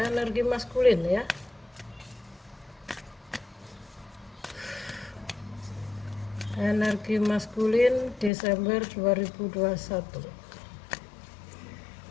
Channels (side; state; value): right; drops out; at 8.3 s